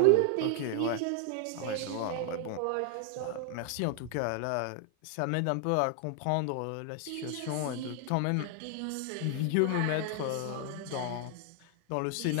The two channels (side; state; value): both; different; correlation 0.00